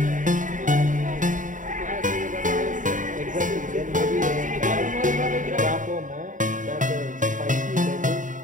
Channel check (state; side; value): late; left; 0.37 ms